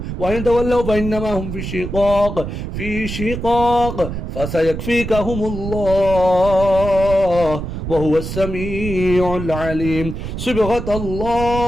وإن تولوا فإنما هم في شقاق فسيكفيكهم الله وهو السميع العليم صبغة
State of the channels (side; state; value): right; noise; rumble, 6 dB below the sound